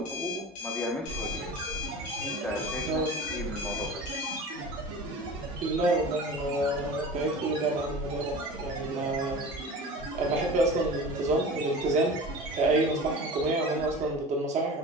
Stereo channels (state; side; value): normal; both; correlation 0.36